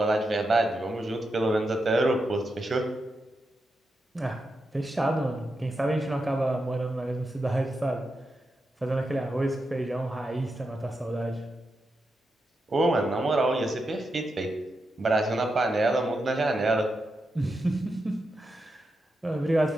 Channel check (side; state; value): both; normal; correlation 0.86